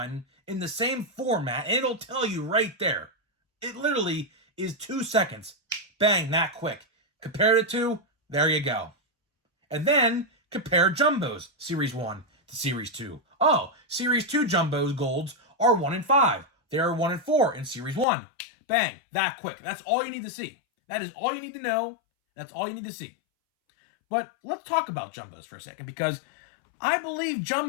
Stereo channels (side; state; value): right; drops out; at 18.1 s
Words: in the same format, and it'll tell you right there. It literally is 2 seconds. Bang, that quick. Compare it to, there you go. And then compare jumbos, Series 1 to Series 2. Oh, Series 2 jumbos golds are 1 in 5. They are 1 in 4 in Series 1. Bang, that quick. That's all you need to see. That is all you need to know. That's all you need to see. But let's talk about jumbos for a second, because I believe